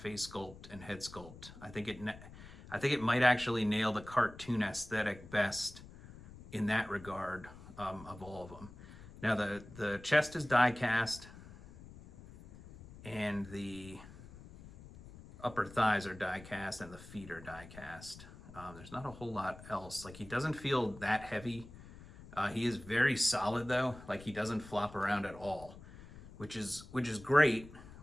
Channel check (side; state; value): left; noise; rumble, 17 dB below the sound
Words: sculpt and head sculpt, I think it might actually nail the cartoon aesthetic best in that regard, of all of them. Now the chest is die cast, and the upper thighs are die cast and the feet are die cast. There's not a whole lot else. Like, he doesn't feel that heavy. He is very solid though. Like, he doesn't flop around at all, which is great.